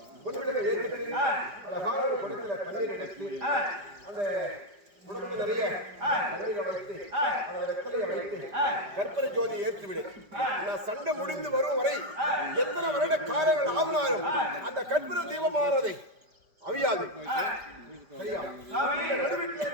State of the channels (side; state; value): left; late; 5.0 ms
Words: பொன்விளக்கை ஏற்றிட்டு அழகான ஒரு குடத்துல தண்ணீர் எடுத்து அந்த குடத்துல நிறைய தண்ணீரை வைத்து அந்த வெத்தலையை வைத்து கற்பனை ஜோதி ஏற்றிவிடு. நான் சண்டை முடிந்து வரும் வரை எத்தனை வருட காலங்கள் ஆகினாலும் அந்த கற்பனை தீபமானதை அவியாது. சரியா?